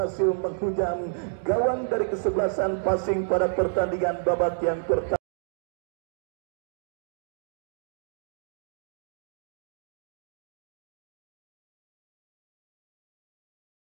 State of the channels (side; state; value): left; silent; digital silence